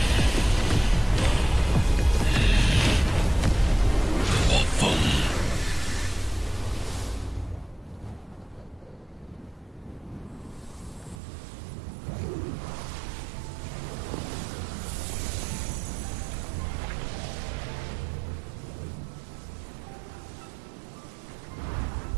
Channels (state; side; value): drops out; left; at 11.2 s